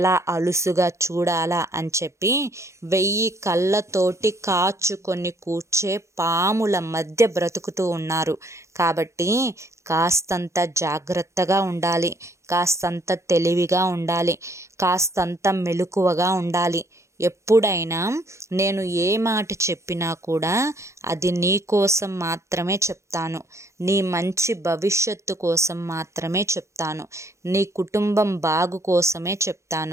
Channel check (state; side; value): late; left; 0.14 ms